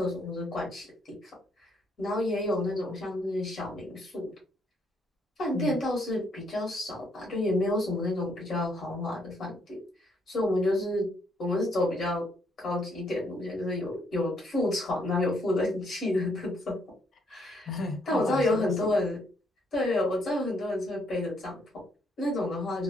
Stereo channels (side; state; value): both; normal; correlation 0.71